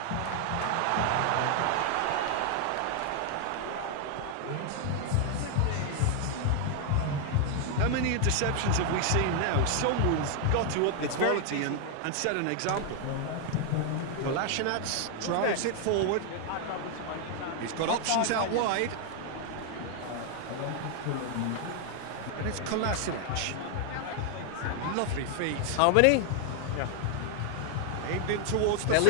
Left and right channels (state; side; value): different; both; correlation 0.00